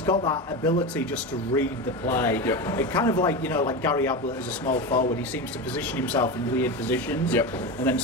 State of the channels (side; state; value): both; normal; correlation 0.21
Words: got that ability just to read the play. Yep. It kind of like like Gary Ablett as a small forward. He seems to position himself in weird positions. Yep. And then